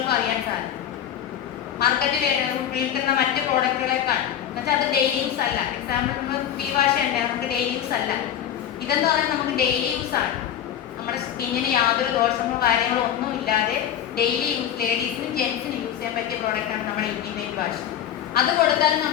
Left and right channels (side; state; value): right; quieter; 10.2 dB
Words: അറിയാൻ സാധിക്കും. മാർക്കറ്റിൽ വിൽക്കുന്ന മറ്റ് പ്രോഡക്റ്റുകളെക്കാൾ എന്നുവെച്ചാൽ അത് ഡെയിലി യൂസ് അല്ല. എക്സാമ്പിൾ നമ്മൾ ഫീ വാഷ് ഉണ്ട്, നമുക്ക് ഡെയിലി യൂസ് അല്ല. ഇതെന്ന് പറഞ്ഞാൽ നമുക്ക് ഡെയിലി യൂസ് ആണ്. നമ്മുടെ സ്കിന്നിന് യാതൊരു ദോഷമോ കാര്യങ്ങളോ ഒന്നും ഇല്ലാതെ ഡെയിലി യൂസ്, ലേഡീസിനും ജെൻസിനും യൂസ് ചെയ്യാൻ പറ്റിയ പ്രോഡക്റ്റാണ് നമ്മുടെ ഇന്റിമേറ്റ് വാഷ്. അത് കൊടുത്താലും